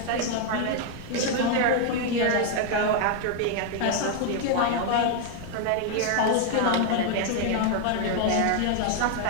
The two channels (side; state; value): both; different; correlation 0.00